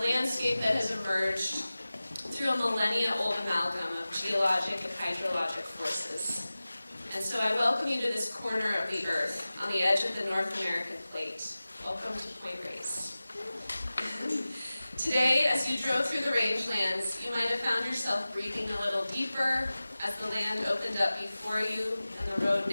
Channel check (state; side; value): inverted; both; correlation -0.97